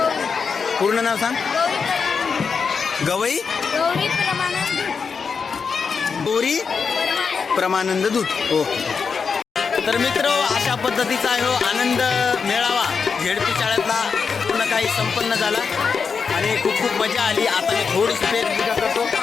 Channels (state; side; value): quieter; right; 5.6 dB